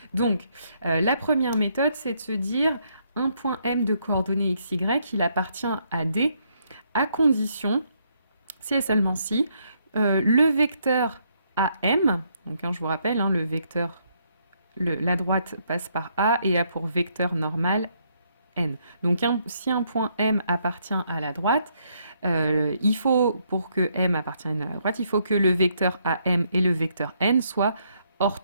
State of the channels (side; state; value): both; inverted; correlation -0.73